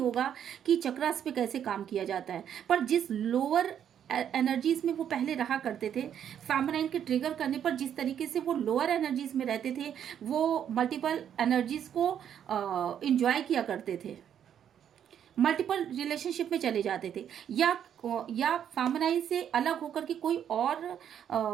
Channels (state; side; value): quieter; left; 9.2 dB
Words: कि चक्रास पे कैसे काम किया जाता है, पर जिस लोअर एनर्जीज में वो पहले रहा करते थे, फेमिनाइन के ट्रिगर करने पर जिस तरीके से वो लोअर एनर्जीज में रहते थे, वो मल्टीपल एनर्जीज को इंजॉय किया करते थे, मल्टीपल रिलेशनशिप में चले जाते थे, या फेमिनाइन से अलग होकर के कोई और